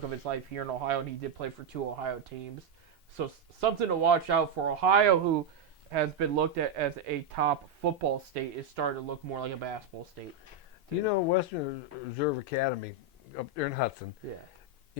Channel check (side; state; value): left; quieter; 3.6 dB